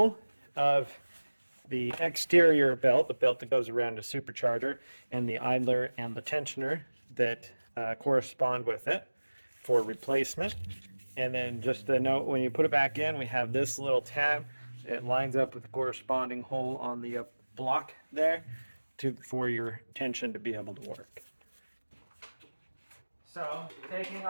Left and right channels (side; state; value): both; inverted; correlation -1.00